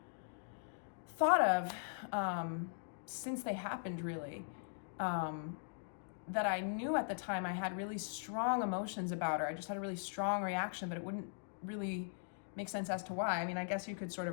thought of since they happened, really, that I knew at the time I had really strong emotions about, or I just had a really strong reaction, but it wouldn't really make sense as to why. I mean, I guess you could sort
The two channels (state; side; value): silent; right; digital silence